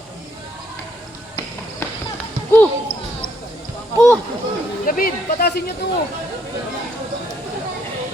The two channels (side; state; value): both; normal; correlation 0.71